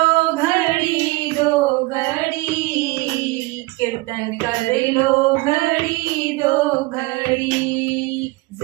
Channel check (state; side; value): quieter; left; 22.3 dB